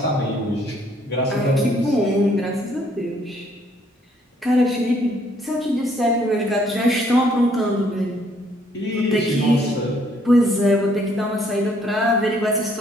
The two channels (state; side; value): normal; both; correlation 0.66